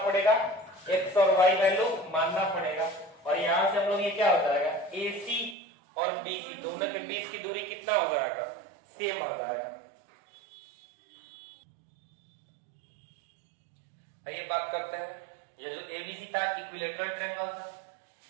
पड़ेगा, x और y वैल्यू मानना पड़ेगा, और यहां से हम लोग ये क्या हो जाएगा AC और BC दोनों के बीच की दूरी कितना हो जाएगा, सेम हो जाएगा। आइए बात करते हैं, ये जो ABC था इक्विलैटरल ट्रायंगल था।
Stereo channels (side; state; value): left; drops out; at 5.6 s